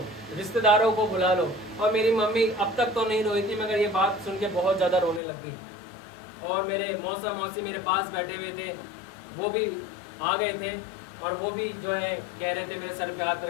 रिश्तेदारों को बुला लो। और मेरी मम्मी अब तक तो नहीं रोई थी, मगर ये बात सुन के बहुत ज़्यादा रोने लग गई। और मेरे मौसा मौसी मेरे पास बैठे हुए थे, वो भी आ गए थे और वो भी जो है कह रहे थे मेरे सर पे हाथ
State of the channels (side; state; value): right; drops out; at 5.2 s